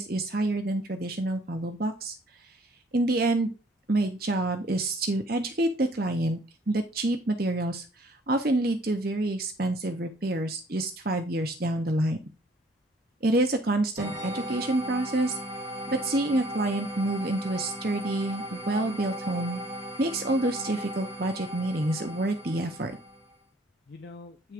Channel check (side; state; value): both; normal; correlation 0.59